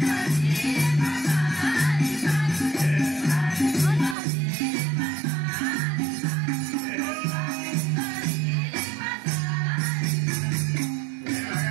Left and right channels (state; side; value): drops out; left; at 4.2 s